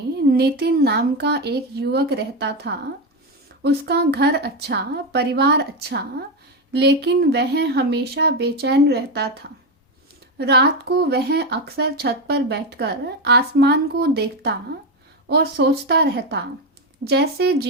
नितिन नाम का एक युवक रहता था। उसका घर अच्छा, परिवार अच्छा, लेकिन वह हमेशा बेचैन रहता था। रात को वह अक्सर छत पर बैठकर आसमान को देखता और सोचता रहता, जैसे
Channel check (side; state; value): both; normal; correlation 0.11